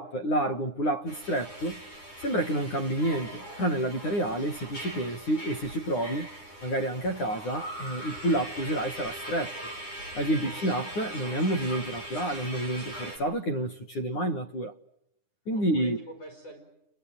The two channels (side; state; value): right; late; 9.8 ms